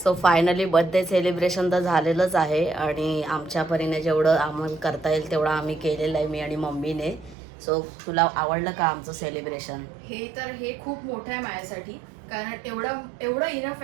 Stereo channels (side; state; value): left; drops out; at 7.4 s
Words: finally birthday celebration तर झालेलंच आहे आणि आमच्या परीने जेवढं आम्हाला करता येईल तेवढं आम्ही केलेलं आहे मी आणि मम्मीने सो तुला आवडलं का आमचं सेलिब्रेशन हे खूप मोठं आहे माझ्यासाठी कारण एवढं इनफ